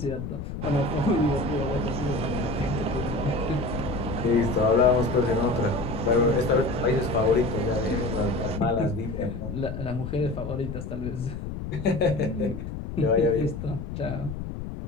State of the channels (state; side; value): noise; left; rumble, 7 dB below the sound